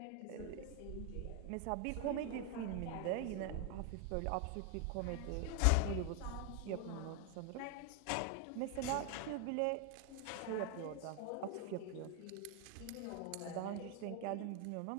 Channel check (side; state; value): both; different; correlation 0.01